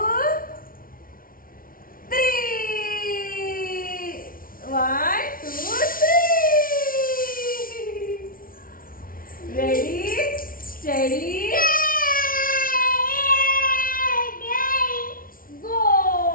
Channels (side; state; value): right; late; 0.42 ms